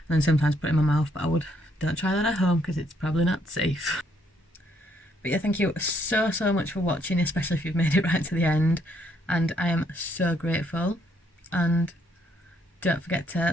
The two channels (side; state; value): both; normal; correlation 0.70